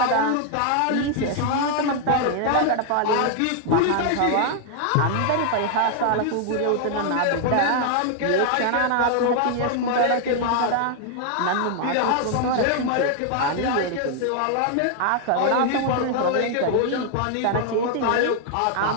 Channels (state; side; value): different; both; correlation 0.00